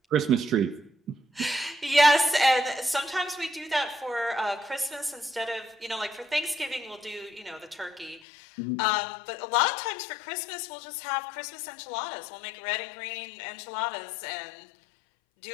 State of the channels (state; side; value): drops out; right; at 8.2 s